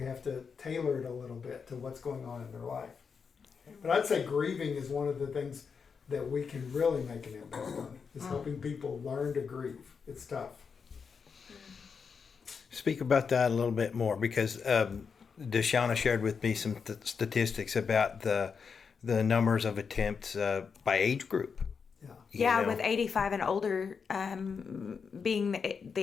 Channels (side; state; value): right; quieter; 5.9 dB